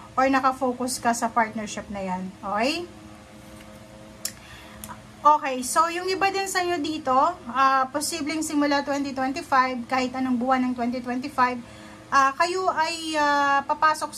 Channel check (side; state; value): both; identical; correlation 1.00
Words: or nakafocus ka sa partnership na yan. Okay? Okay, so yung iba din sa inyo dito, posibleng simula 2025, kahit anong buwan ng 2025, kayo ay papasok